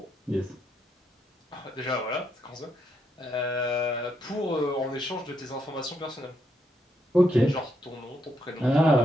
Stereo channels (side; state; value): both; normal; correlation 0.78